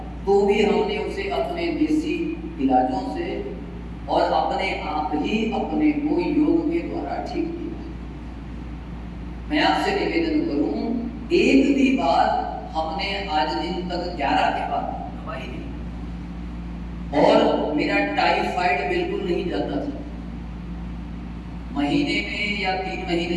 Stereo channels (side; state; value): both; identical; correlation 1.00